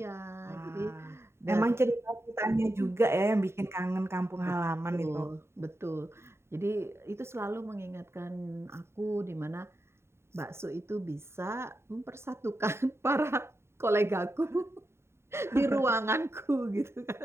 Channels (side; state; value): left; late; 0.12 ms